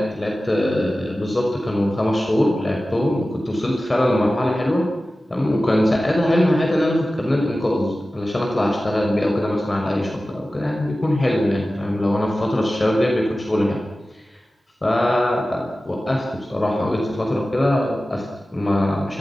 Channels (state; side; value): normal; both; correlation 0.95